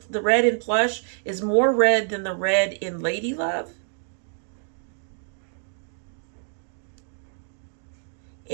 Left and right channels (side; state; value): left; silent; digital silence